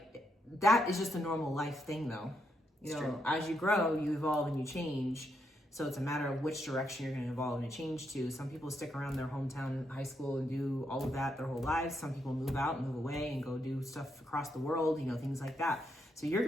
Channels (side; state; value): both; normal; correlation 0.79